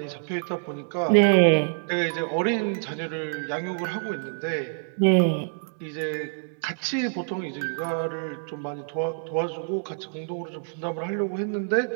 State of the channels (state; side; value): silent; left; 61 dB below the other